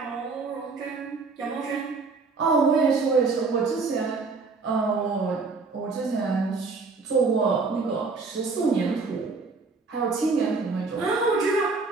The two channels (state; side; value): quieter; left; 4.2 dB